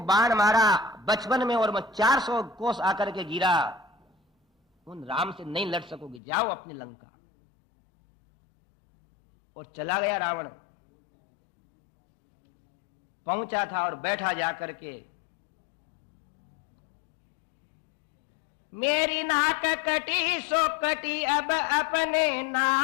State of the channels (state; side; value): drops out; right; at 6.2 s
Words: बाण मारा बचपन में और मैं 400 कोस आकर के गिरा, उन राम से नहीं लड़ सकोगे, जाओ अपनी लंका। और चला गया रावण। पहुंचा था और बैठा जाकर के, मेरी नाक कटी सो कटी, अब अपने